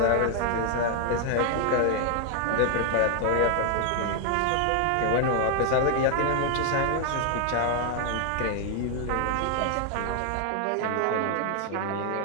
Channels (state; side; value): different; both; correlation 0.00